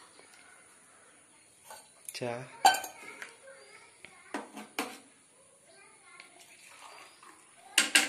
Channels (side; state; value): both; identical; correlation 1.00